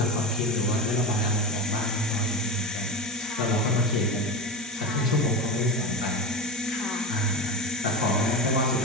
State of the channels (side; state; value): right; noise; hiss, 18 dB below the sound